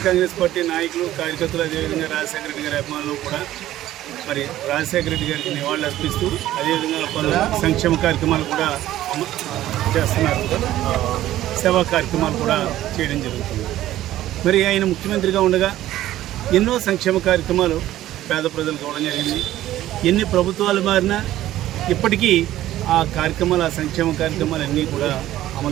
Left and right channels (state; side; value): quieter; left; 14.0 dB